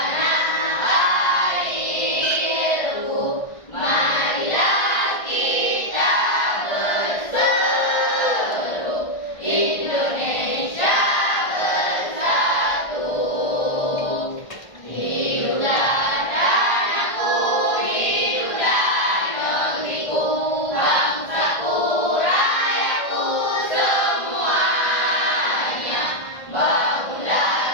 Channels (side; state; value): right; late; 1.5 ms